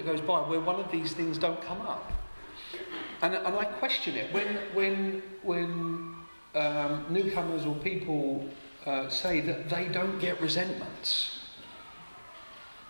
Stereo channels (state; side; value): inverted; both; correlation -1.00